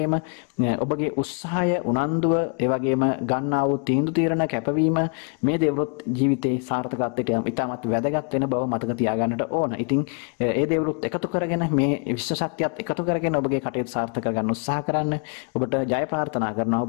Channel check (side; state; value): right; quieter; 38.5 dB